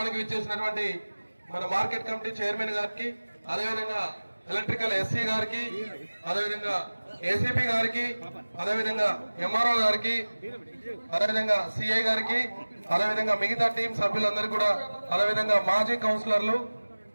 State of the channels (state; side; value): inverted; both; correlation -1.00